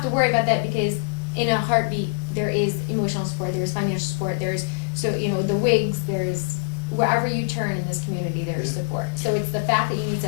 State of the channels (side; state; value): right; silent; digital silence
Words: to worry about that because in a heartbeat, there is emotional support, there's financial support, there's, the wigs, there's, wherever you turn in this community, there's support. So it's the fact that you need